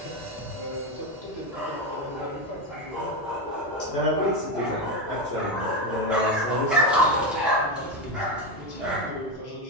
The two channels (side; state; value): both; normal; correlation 0.14